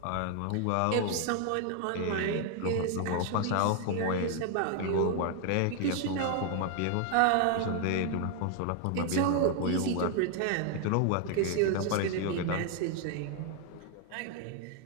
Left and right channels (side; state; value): both; different; correlation 0.00